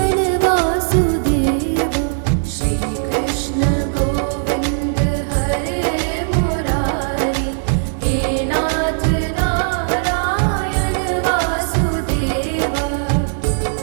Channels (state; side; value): silent; left; digital silence